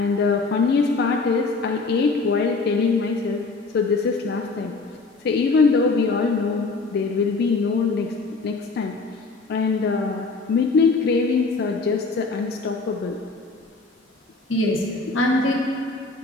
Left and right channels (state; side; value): quieter; right; 3.9 dB